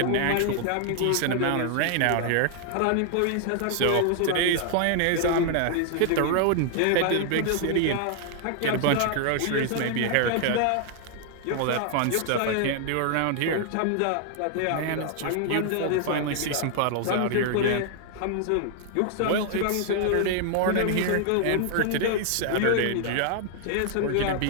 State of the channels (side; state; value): both; different; correlation 0.00